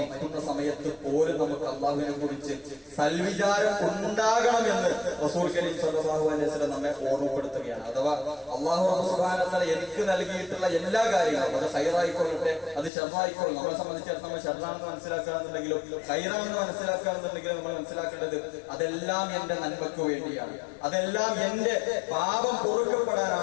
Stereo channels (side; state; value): right; drops out; at 12.9 s